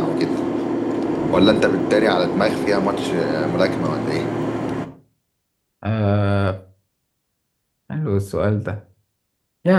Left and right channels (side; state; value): both; identical; correlation 1.00